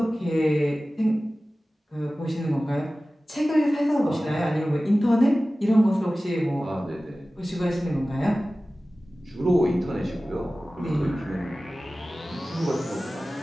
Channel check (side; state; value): both; normal; correlation 0.96